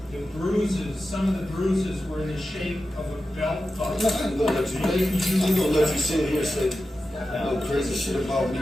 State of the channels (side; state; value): both; normal; correlation 0.92